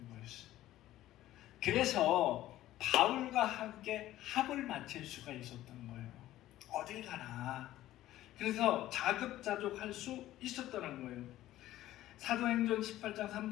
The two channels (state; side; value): quieter; right; 14.4 dB